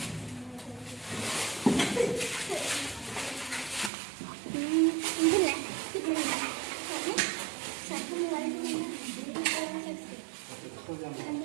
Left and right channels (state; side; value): drops out; left; at 3.9 s